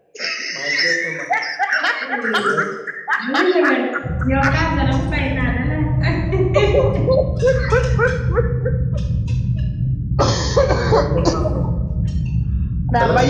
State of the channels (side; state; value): both; identical; correlation 1.00